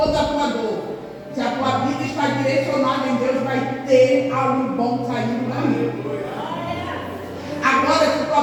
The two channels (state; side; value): identical; both; correlation 1.00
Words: a tua dor. Se a tua vida está direcionada em Deus, vai ter algo bom saindo daí. Agora, se a tua